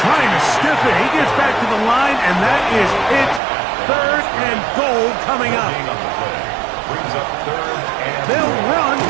trying to stiff it. He gets back to the line, and that is it. 3rd and goal coming up. Brings up 3rd and They'll run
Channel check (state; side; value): drops out; left; at 3.4 s